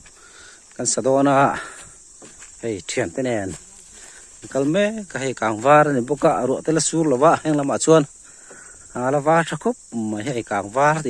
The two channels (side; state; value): both; identical; correlation 1.00